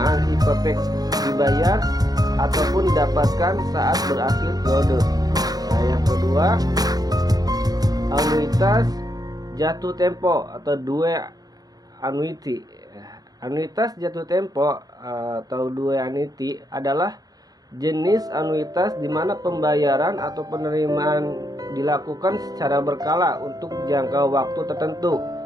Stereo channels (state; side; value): late; left; 0.19 ms